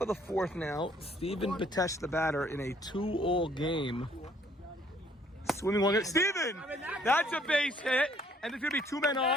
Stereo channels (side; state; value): both; normal; correlation 0.62